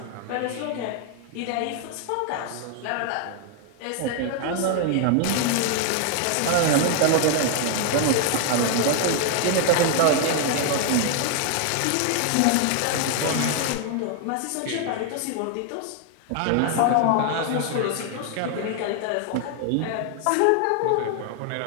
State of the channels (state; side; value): different; both; correlation 0.00